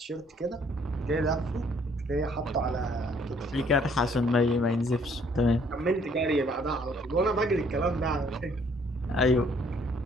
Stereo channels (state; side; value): normal; both; correlation 0.63